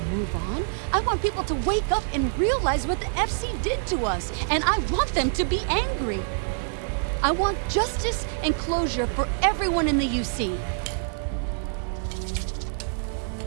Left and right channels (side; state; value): left; silent; digital silence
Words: move on. I want people to wake up and realize what the FC did to us, and I want them to be angry. I want justice and closure for everyone in the UC.